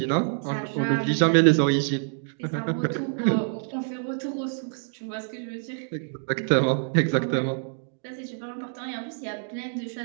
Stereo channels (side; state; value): left; silent; digital silence